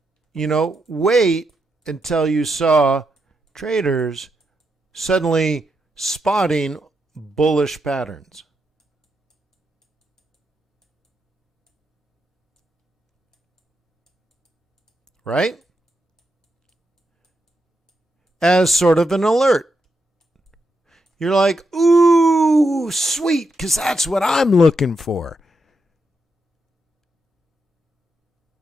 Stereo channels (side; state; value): both; normal; correlation 0.83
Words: wait until you saw traders suddenly spotting bullish patterns. Right? As sort of an alert. You're like, ooh, sweet, because that's what I'm looking for.